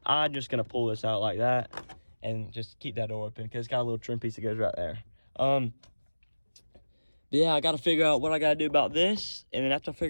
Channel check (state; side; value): inverted; both; correlation -1.00